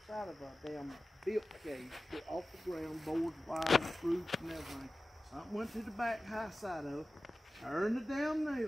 of a damn built cage, off the ground, boards, wires, fruits, and everything. Something went to the back high side of it, turned the damn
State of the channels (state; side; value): normal; both; correlation 0.96